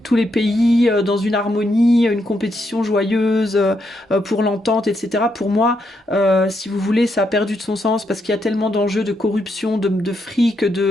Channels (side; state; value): both; normal; correlation 0.79